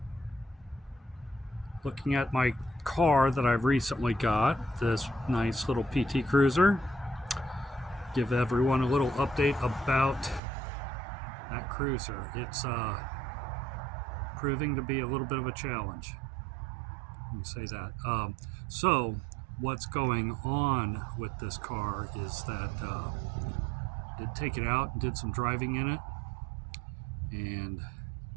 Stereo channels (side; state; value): left; drops out; at 10.4 s